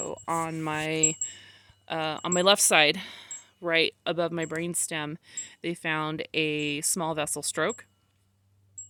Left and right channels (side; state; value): both; identical; correlation 1.00